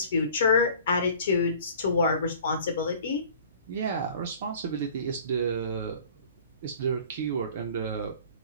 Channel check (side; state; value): both; inverted; correlation -0.48